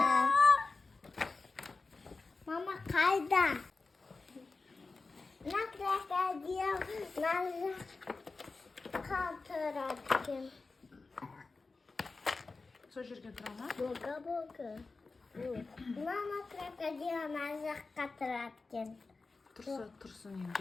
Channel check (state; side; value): quieter; right; 3.9 dB